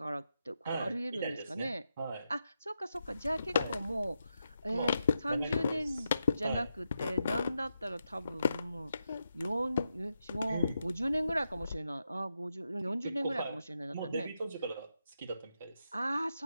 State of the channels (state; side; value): inverted; both; correlation -0.86